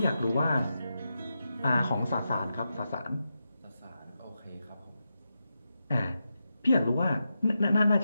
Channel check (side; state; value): both; inverted; correlation -0.88